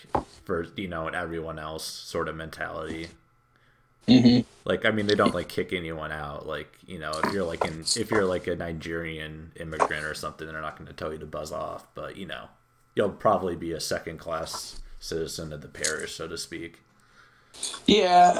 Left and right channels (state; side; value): identical; both; correlation 1.00